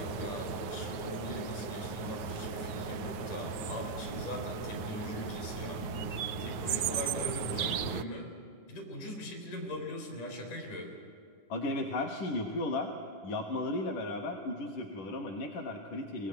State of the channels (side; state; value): right; late; 9.5 ms